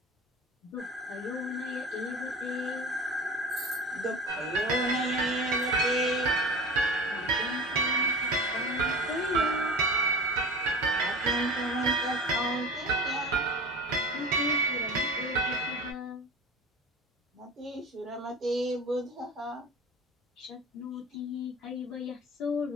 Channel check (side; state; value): both; normal; correlation 0.35